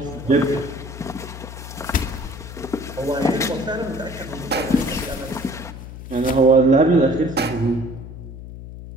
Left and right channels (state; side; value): noise; left; hum, 12 dB below the sound